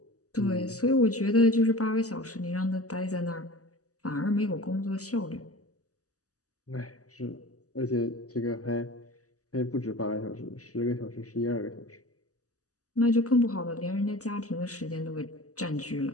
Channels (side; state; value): right; late; 0.66 ms